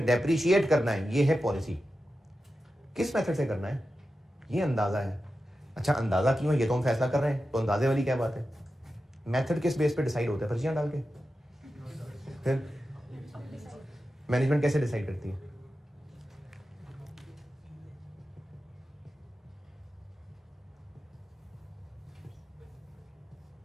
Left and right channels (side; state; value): both; normal; correlation 0.91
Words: डेप्रिशिएट करना है, ये है पॉलिसी। किस मेथड से करना है? ये अंदाजा है। अच्छा अंदाजा क्यों है ये तो हम फैसला कर रहे हैं, तो अंदाजे वाली क्या बात है? मेथड किस बेस पे डिसाइड होता है? पर्चियां डाल के। फिर मैनेजमेंट कैसे डिसाइड करती है?